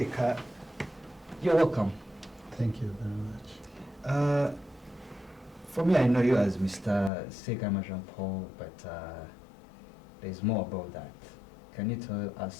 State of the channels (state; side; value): drops out; right; at 7.1 s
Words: you're welcome. Thank you very much. For me, I know you as Mr. Seka Jean-Paul, but there's more about that. Can you tell